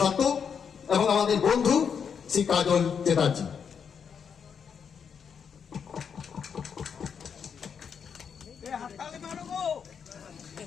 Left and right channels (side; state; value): right; quieter; 6.9 dB